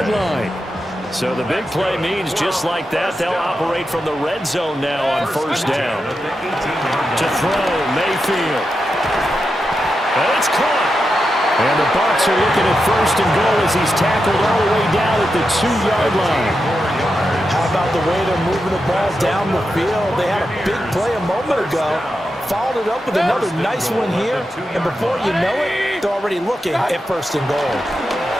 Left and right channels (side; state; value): both; normal; correlation 0.88